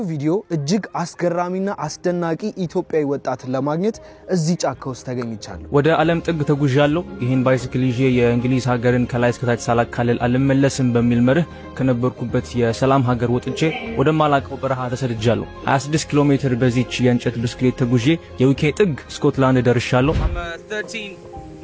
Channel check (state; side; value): identical; both; correlation 1.00